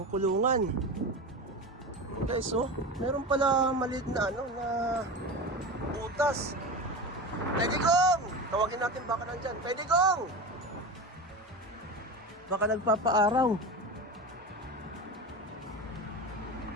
kulungan. Guys, meron pala maliit na na butas. Tay Digong! Tawagin natin baka nandyan. Tay Digong! Baka nagpapaaraw.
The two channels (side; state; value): both; normal; correlation 0.26